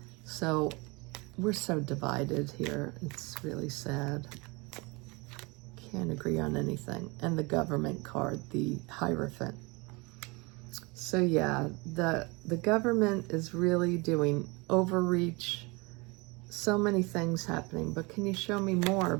So we're so divided here. It's really sad. Can't agree on anything. And the government card, the Hierophant. So yeah, the government is really doing overreach. So many things happening. But can you show me more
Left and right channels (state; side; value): quieter; left; 26.8 dB